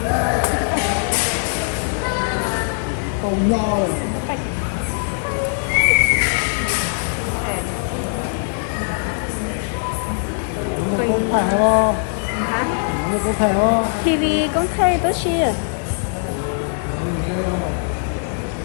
Cầu nho này. Con thẻ không? Con thẻ không? TV con thấy tốt xí à.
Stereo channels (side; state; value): right; silent; digital silence